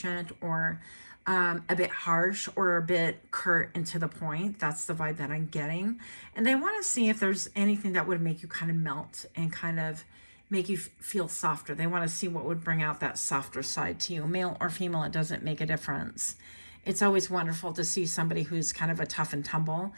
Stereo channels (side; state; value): both; inverted; correlation -1.00